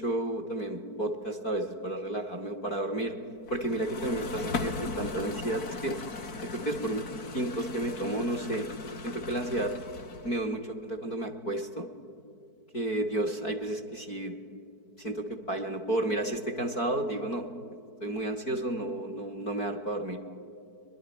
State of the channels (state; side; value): late; right; 4.5 ms